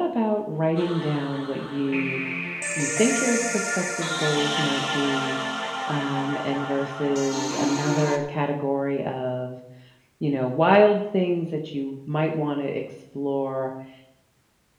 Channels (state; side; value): identical; both; correlation 1.00